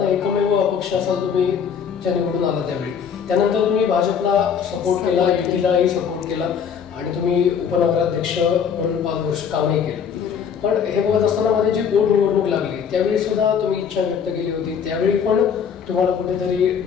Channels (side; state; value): right; quieter; 7.3 dB